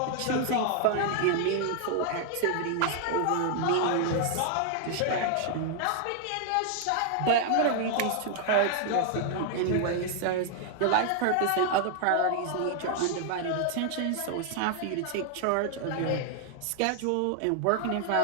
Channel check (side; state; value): both; different; correlation 0.00